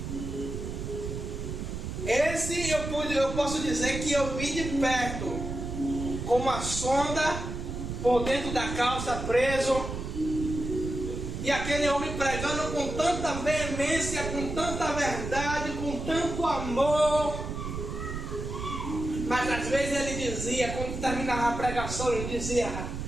Esse eu posso dizer que eu vi de perto, com uma sonda por dentro da calça preso, e aquele homem pregando com tanta veemência, com tanta verdade, com tanto amor. Mas às vezes ele dizia, quando terminava a pregação, ele dizia,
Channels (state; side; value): noise; right; rumble, 6 dB below the sound